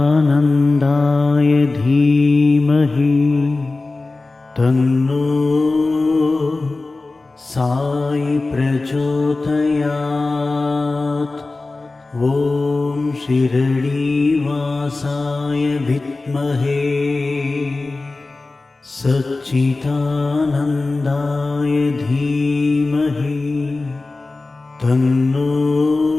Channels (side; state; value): right; quieter; 3.4 dB